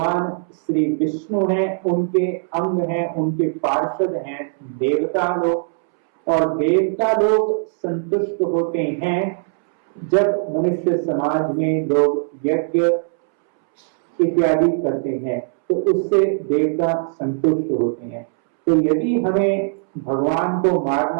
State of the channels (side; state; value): left; silent; 66 dB below the other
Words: श्री विष्णु हैं, उनके अंग हैं, उनके पार्षद हैं देवता लोग, और देवता लोग संतुष्ट होते हैं जब मनुष्य समाज में लोग यज्ञ इत्यादि करते हैं, तो उससे देवता संतुष्ट होते हैं। तो यदि हमें भगवान को